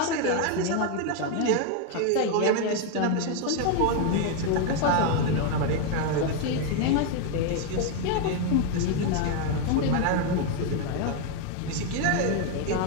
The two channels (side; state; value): both; different; correlation 0.01